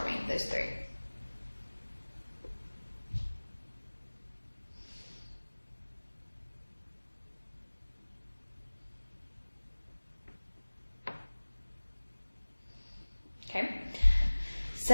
me, those three. Okay,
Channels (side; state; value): both; inverted; correlation -1.00